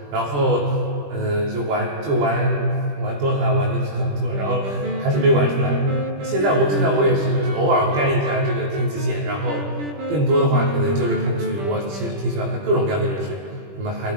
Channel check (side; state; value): left; late; 20 ms